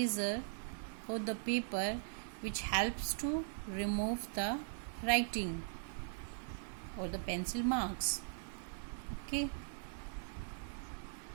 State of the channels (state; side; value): silent; left; digital silence